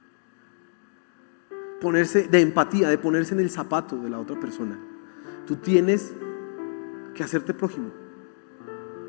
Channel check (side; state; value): right; silent; digital silence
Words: empatía, de ponerse en el zapato de la otra persona. Tú tienes que hacerte prójimo.